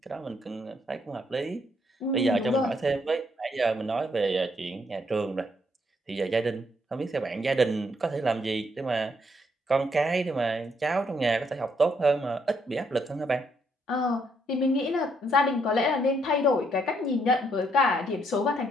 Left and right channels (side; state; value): both; normal; correlation 0.72